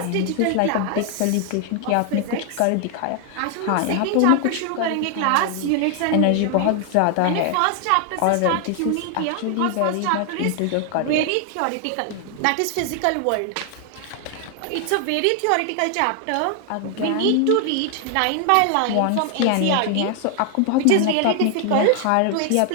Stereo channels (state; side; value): different; both; correlation 0.00